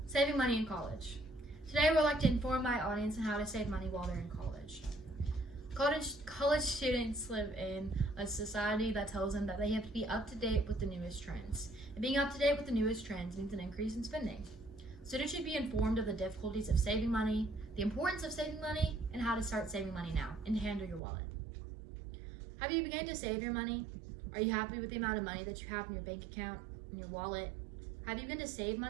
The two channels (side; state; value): left; drops out; at 21.0 s